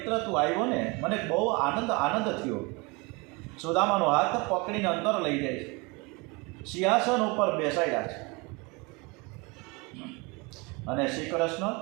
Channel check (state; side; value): quieter; left; 27.4 dB